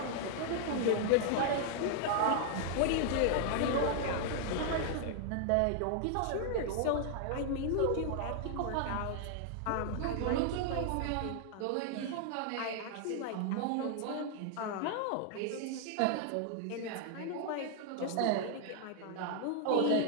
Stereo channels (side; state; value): both; different; correlation 0.00